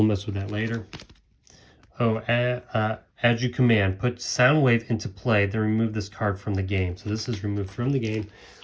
mess with that later. Oh, as you command, put Soundwave into play, then remove this card from the game. So this is removed from the game.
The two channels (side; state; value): both; identical; correlation 1.00